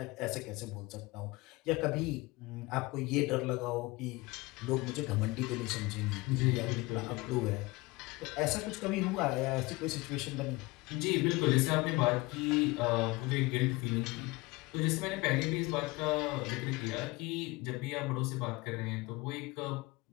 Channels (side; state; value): right; quieter; 22.8 dB